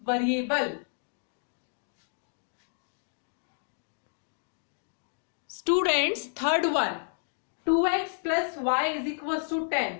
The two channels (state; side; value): silent; right; digital silence